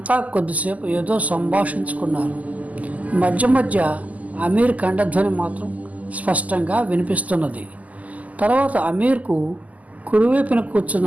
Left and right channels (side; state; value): left; late; 0.075 ms